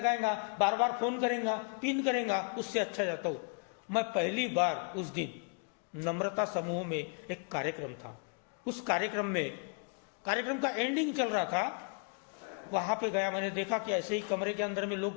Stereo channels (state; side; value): quieter; right; 39.3 dB